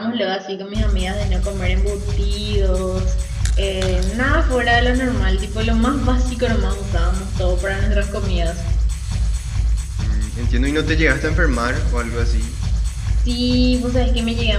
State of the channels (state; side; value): identical; both; correlation 1.00